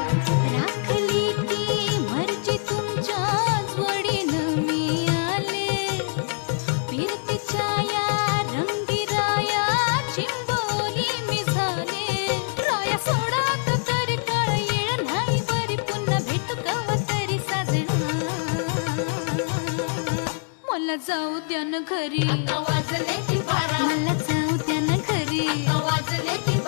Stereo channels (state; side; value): silent; right; 62 dB below the other